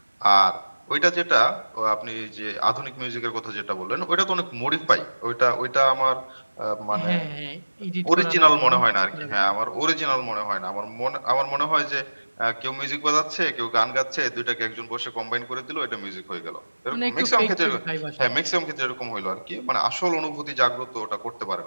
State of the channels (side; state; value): both; inverted; correlation -1.00